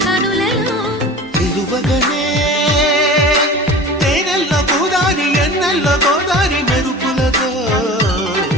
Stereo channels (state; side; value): normal; both; correlation 0.37